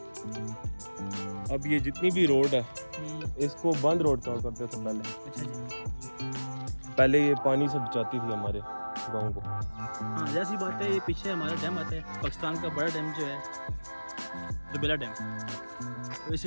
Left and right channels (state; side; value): inverted; both; correlation -1.00